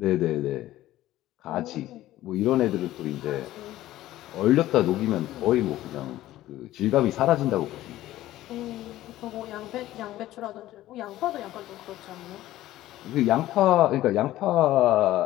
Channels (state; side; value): quieter; right; 15.0 dB